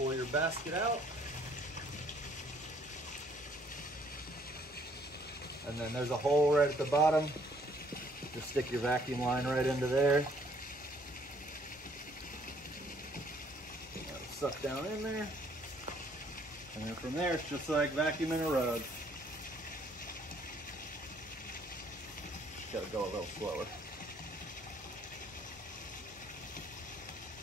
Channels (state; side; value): normal; both; correlation 0.63